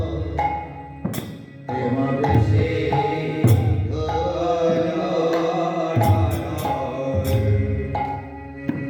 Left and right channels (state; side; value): identical; both; correlation 1.00